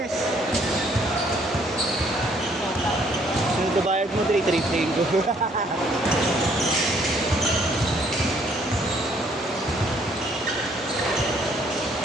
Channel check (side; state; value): both; normal; correlation 0.65